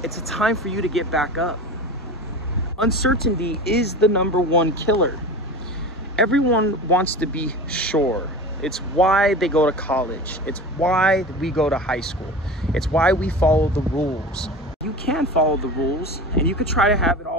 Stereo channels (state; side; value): normal; both; correlation 0.32